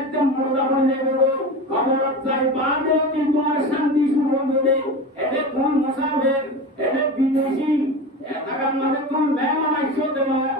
মুর্দা বনে দেবো খবর চাই বাদে কি তোমার শান্তি শুরু হবে এতে কোন মুসাফির এতে বিদেশি এটাকার মধ্যে কোন মেহমান আইসো দেব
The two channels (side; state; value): both; normal; correlation 0.27